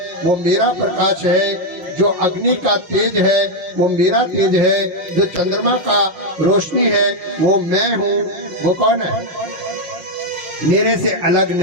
वो मेरा प्रकाश है, जो अग्नि का तेज है वो मेरा तेज है, जो चंद्रमा का रोशनी है वो मैं हूँ। वो कौन है? मेरे से अलग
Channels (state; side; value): late; left; 5.6 ms